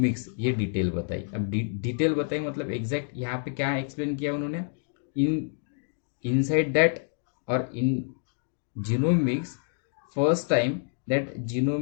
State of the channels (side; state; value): right; silent; digital silence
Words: ये डिटेल बताई। अब डिटेल बताई मतलब एग्जैक्ट यहाँ पे क्या एक्सप्लेन किया उन्होंने? इनसाइड दैट और in genomics first time that